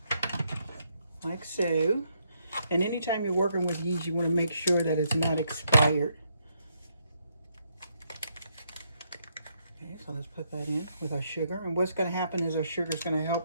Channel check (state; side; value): inverted; both; correlation -0.76